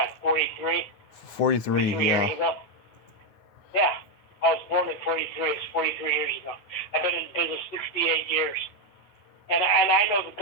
43. 43 years ago. Yeah, I was born in 43. It's 43 years ago. I've been in business 68 years, and I know the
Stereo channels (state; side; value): late; right; 9.5 ms